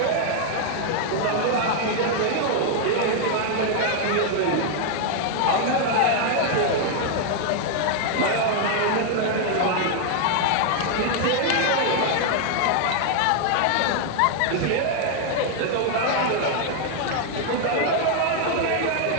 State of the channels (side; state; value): both; different; correlation 0.00